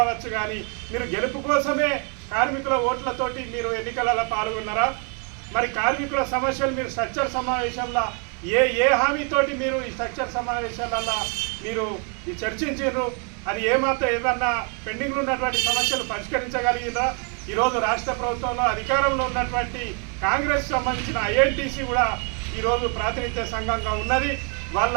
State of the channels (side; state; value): left; quieter; 38.2 dB